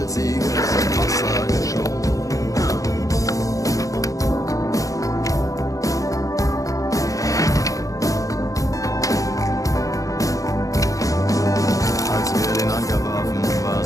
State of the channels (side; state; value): right; late; 0.16 ms